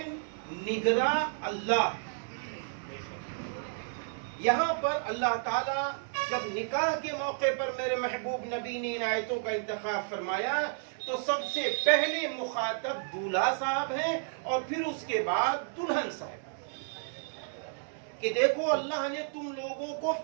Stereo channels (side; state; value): left; silent; digital silence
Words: نگراں اللہ ہے. یہاں پر اللہ تعالیٰ جب نکاح کے موقع پر میرے محبوب نبی نے ان آیتوں کا انتخاب فرمایا تو سب سے پہلے مخاطب دولہا صاحب ہیں اور پھر اس کے بعد دلہن صاحب، کہ دیکھو اللہ نے تم لوگوں کو